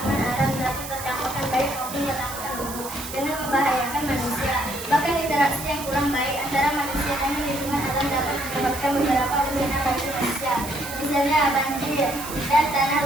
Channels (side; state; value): right; noise; hiss, 10 dB below the sound